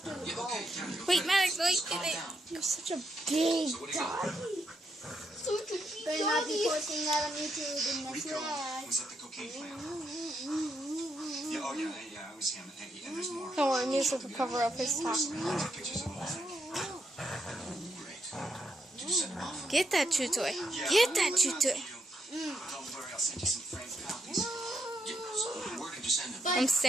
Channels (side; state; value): both; normal; correlation 0.79